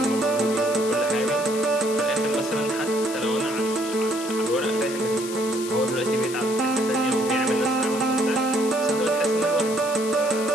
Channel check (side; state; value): left; noise; hiss, 10 dB below the sound